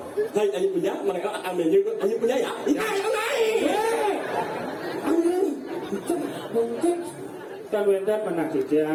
Hai Layu Puja, mangeo akan menyanyi untuk Layu Puja ya. Mungkin kan wendan mana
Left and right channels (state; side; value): identical; both; correlation 1.00